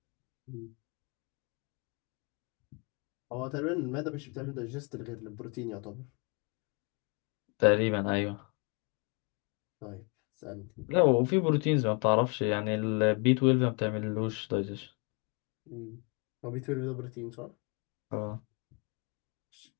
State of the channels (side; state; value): right; quieter; 33.1 dB